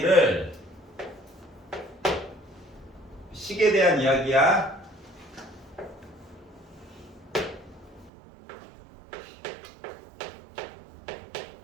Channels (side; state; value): left; drops out; at 8.1 s